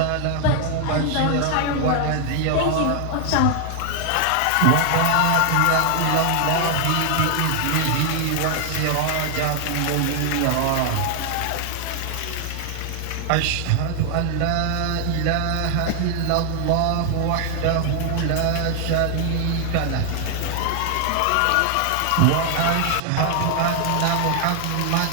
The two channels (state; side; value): different; both; correlation 0.00